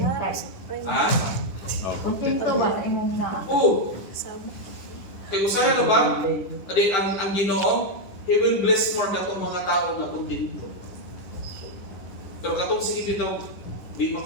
Ha? Kontento ba sa imong na? Oo. Kaya usaya na ba? Adi, ang Ginoo, He will bless more katong mga tao na kontento. Pero katong sige dito, di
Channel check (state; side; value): late; right; 10 ms